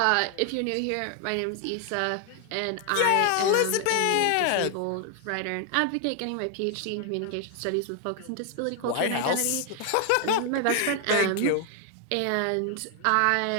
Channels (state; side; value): different; both; correlation 0.00